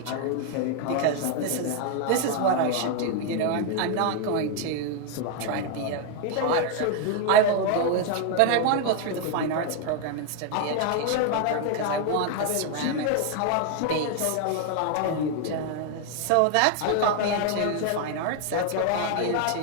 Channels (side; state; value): both; different; correlation 0.01